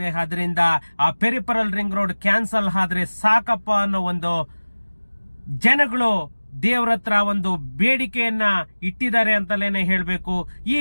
ಅದರಿಂದ ಆ ಪೆರಿಫೆರಲ್ ರಿಂಗ್ ರೋಡ್ ಕ್ಯಾನ್ಸಲ್ ಆದ್ರೆ ಸಾಕಪ್ಪ ಅನ್ನೋ ಒಂದು ಜನಗಳು ದೇವ್ರ ಹತ್ರ ಒಂದು ಬೇಡಿಕೆಯನ್ನ ಇಟ್ಟಿದ್ದಾರೆ ಅಂತಲೇನೆ ಹೇಳ್ಬೇಕು. ಈ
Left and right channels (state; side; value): inverted; both; correlation -1.00